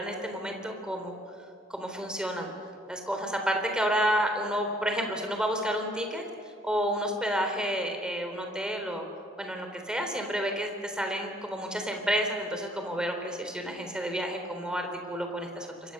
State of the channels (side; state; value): both; normal; correlation 0.61